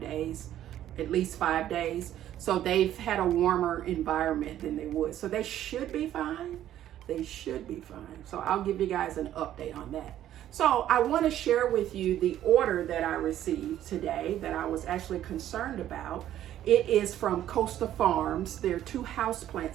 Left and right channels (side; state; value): left; quieter; 12.0 dB